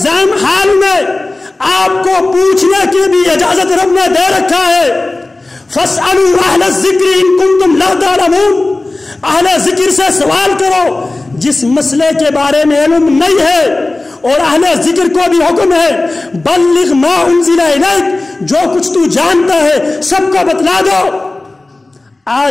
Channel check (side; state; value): right; quieter; 3.0 dB